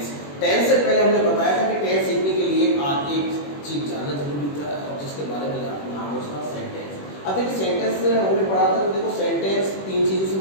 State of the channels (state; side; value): late; right; 21 ms